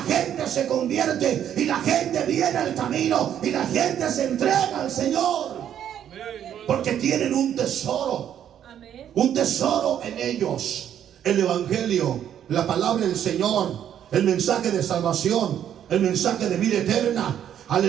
gente se convierte, y la gente viene al camino, y la gente se entrega al Señor. Porque tienen un tesoro, un tesoro en ellos: el evangelio, la palabra del Señor, el mensaje de salvación, el mensaje de vida eterna.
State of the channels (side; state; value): left; quieter; 9.9 dB